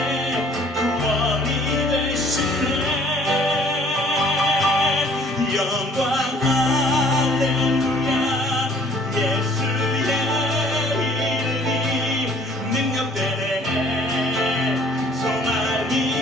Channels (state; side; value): normal; both; correlation 0.56